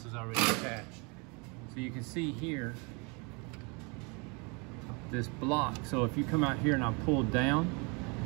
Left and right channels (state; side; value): quieter; left; 31.4 dB